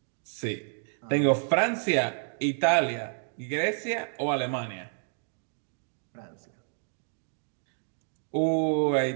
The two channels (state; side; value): silent; left; 58 dB below the other